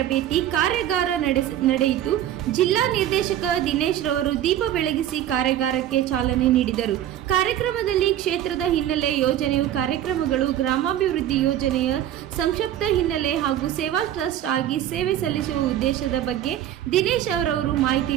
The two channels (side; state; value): left; quieter; 11.7 dB